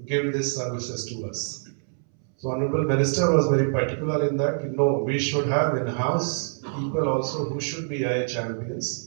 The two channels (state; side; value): silent; left; 61 dB below the other